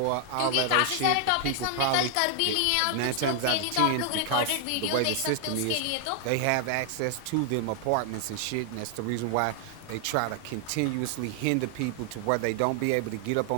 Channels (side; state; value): both; different; correlation 0.00